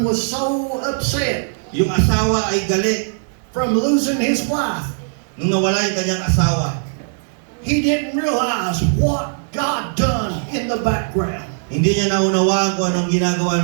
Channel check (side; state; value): left; silent; 64 dB below the other